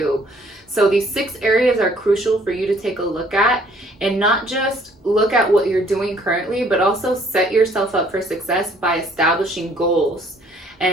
So these 6 areas are crucial for you to take a look at, and not just look at what you're doing currently, but also set yourself up for success by establishing goals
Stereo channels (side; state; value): both; normal; correlation 0.60